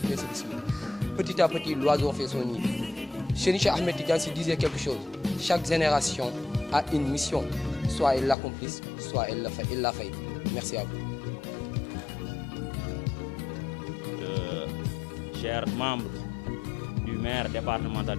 ainsi de suite. Petit à petit, l'oiseau fait son nid. Cheikh Ahmed Tidiane disait quelque chose. Chaque génération a une mission. Soit elle l'accomplisse, soit elle l'a fait. Merci à vous. Chers membres du maire départemental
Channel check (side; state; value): right; drops out; at 8.3 s